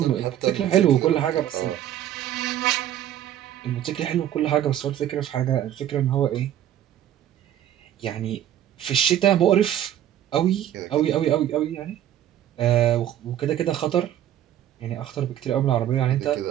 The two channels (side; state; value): left; quieter; 11.4 dB